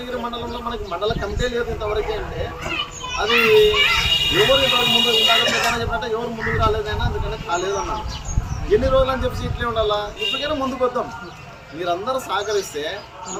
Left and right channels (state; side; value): identical; both; correlation 1.00